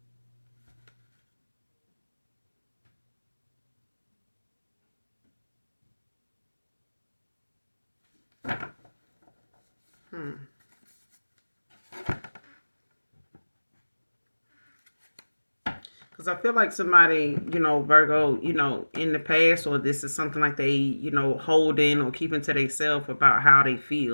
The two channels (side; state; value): both; inverted; correlation -1.00